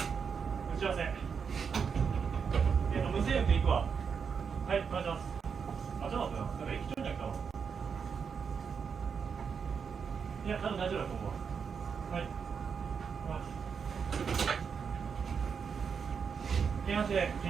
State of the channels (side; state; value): left; quieter; 6.3 dB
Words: 打ち合わせ。無制約で行くわ。はい、お願いします。あ、ちょっと待ってな。なんか駅長に来たわ。いや、多分大丈夫だと思うわ。はい。京阪市で